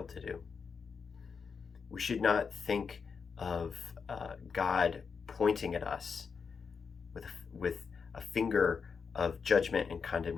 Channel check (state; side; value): quieter; right; 5.7 dB